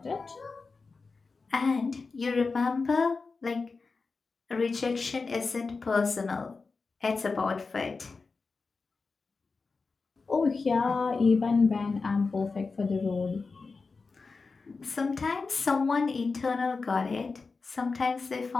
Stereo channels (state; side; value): quieter; right; 4.3 dB